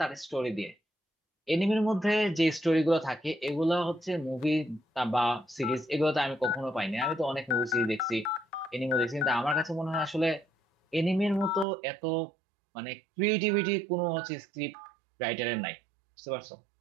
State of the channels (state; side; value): drops out; left; at 11.7 s